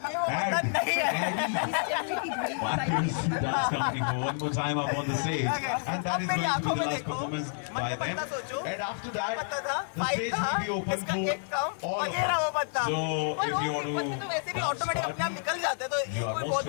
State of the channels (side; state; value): right; silent; 58 dB below the other